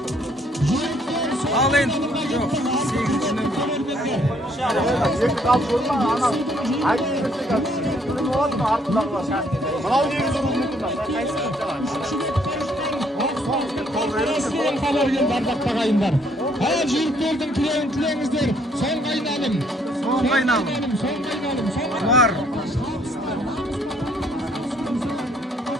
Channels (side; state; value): both; normal; correlation 0.66